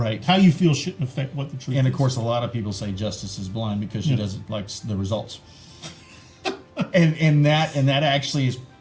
How you feel shouldn't affect what the truth is. And of course, a lot of people say justice is blind because she doesn't like the results. and that actually is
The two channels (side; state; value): both; identical; correlation 1.00